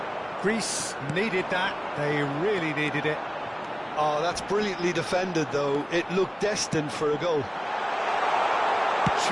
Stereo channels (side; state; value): both; identical; correlation 1.00